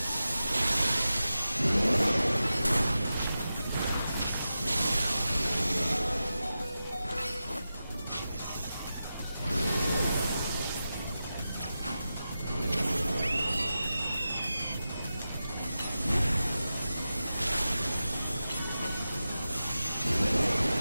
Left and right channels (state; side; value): inverted; both; correlation -0.92